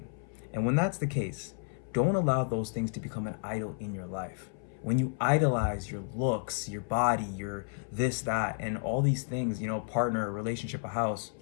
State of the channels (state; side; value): silent; right; 57 dB below the other